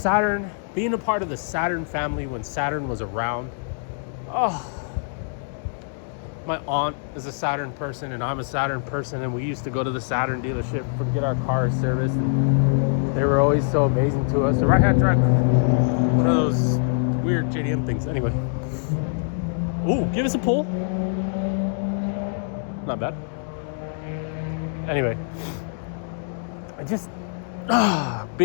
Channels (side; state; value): right; silent; digital silence